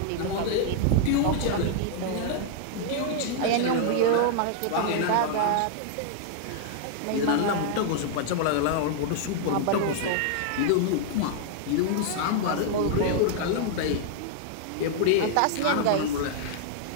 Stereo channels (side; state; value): both; different; correlation -0.01